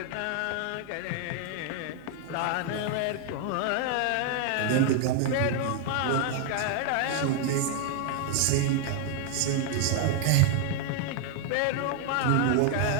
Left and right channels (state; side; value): different; both; correlation 0.00